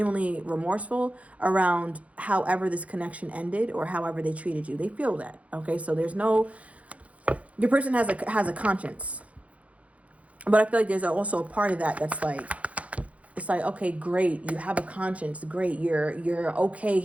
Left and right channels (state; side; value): late; left; 0.065 ms